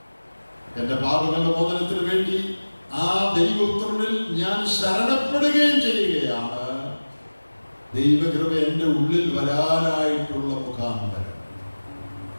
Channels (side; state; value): both; inverted; correlation -1.00